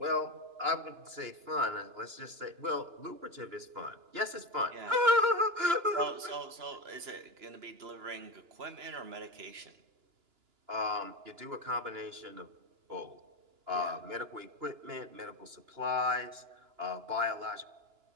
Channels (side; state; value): left; late; 2.9 ms